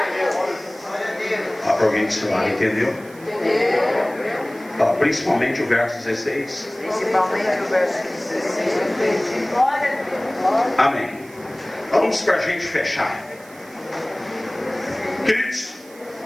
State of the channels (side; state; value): right; noise; hiss, 23 dB below the sound